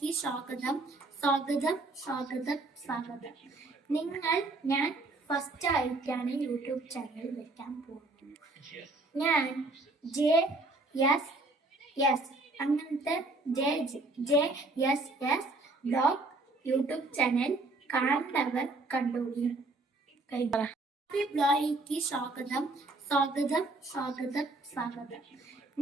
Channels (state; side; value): quieter; left; 3.1 dB